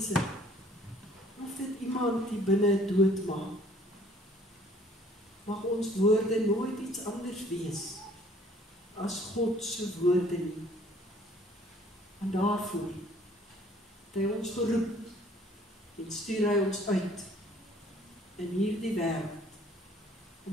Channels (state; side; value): normal; both; correlation 0.57